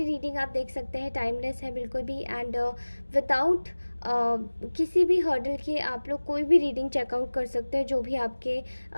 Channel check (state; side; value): inverted; both; correlation -1.00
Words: रीडिंग आप देख सकते हैं, टाइमलेस है बिल्कुल भी। एंड विदाउट किसी भी हर्डल के आप लोग कोई भी रीडिंग चेकआउट कर सकते हैं, जो भी आपके